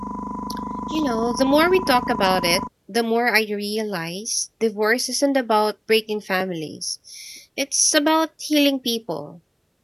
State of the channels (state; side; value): identical; both; correlation 1.00